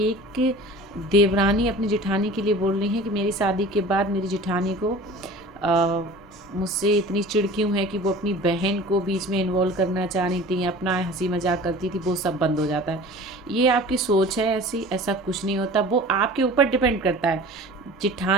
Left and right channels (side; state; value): both; normal; correlation 0.41